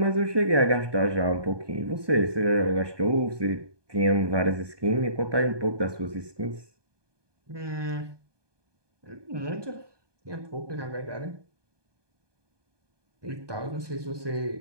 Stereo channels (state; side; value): late; left; 1.2 ms